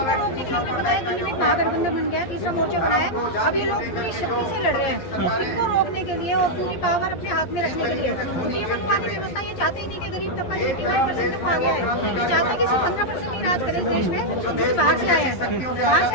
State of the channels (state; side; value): late; right; 11 ms